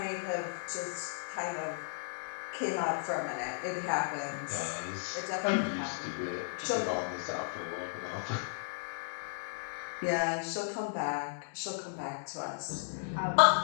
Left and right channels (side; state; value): right; silent; digital silence